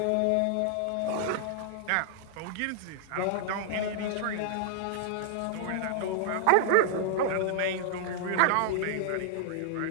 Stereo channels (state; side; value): different; both; correlation -0.01